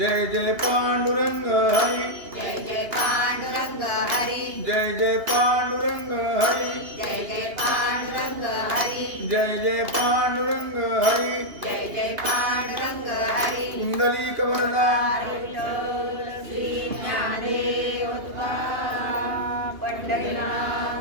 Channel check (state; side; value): late; left; 2.8 ms